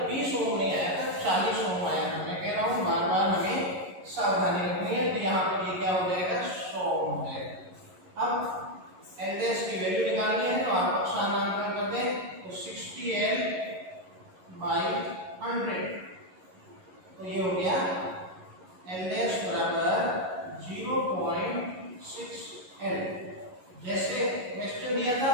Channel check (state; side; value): late; left; 11 ms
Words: 20 ओम नहीं आया था, 40 ओम आया था। मैं कह रहा हूँ बार बार हमें सावधानी रखनी है, तो यहाँ पर ये क्या हो जाएगा, 100 ओम हो जाएगा। अब L डैश की वैल्यू निकालनी है, तो आप स्थानांतरण कर दें, तो 60L बाई 100, तो ये हो गया L डैश बराबर 0.6L। जैसे क्वेश्चन दिया था